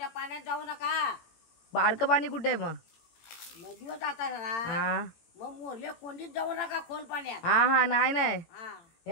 पाण्यात जाऊ नका. बारकं पाणी कुठे मग. नदीवर जाता ना. हा मग मोरले कोंडीत जाऊ नका खोल पाण्यात. हा हा नाही नाही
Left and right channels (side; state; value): right; late; 18 ms